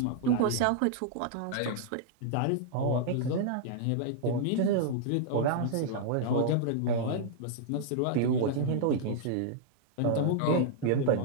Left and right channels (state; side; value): different; both; correlation -0.01